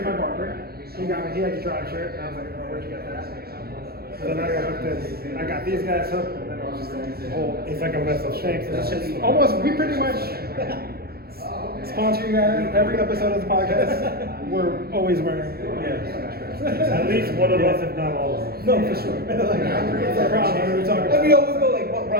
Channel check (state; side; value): late; left; 0.45 ms